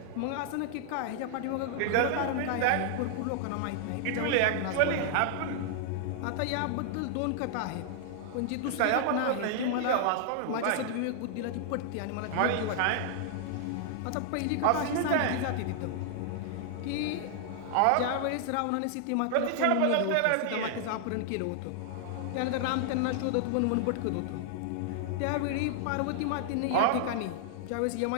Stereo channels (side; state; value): both; different; correlation -0.01